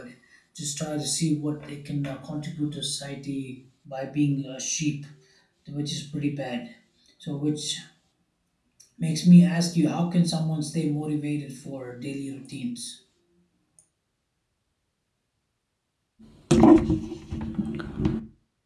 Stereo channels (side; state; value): both; identical; correlation 1.00